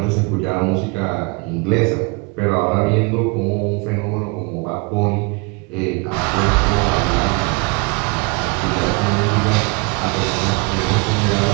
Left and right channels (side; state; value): left; quieter; 29.5 dB